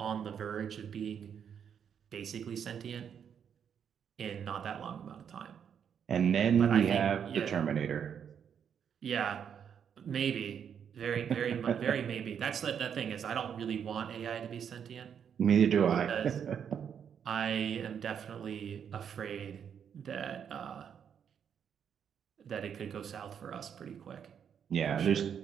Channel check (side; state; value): left; quieter; 7.9 dB